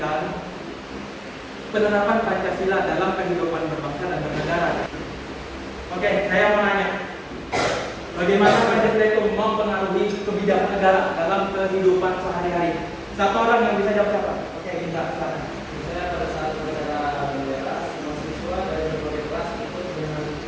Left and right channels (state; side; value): identical; both; correlation 1.00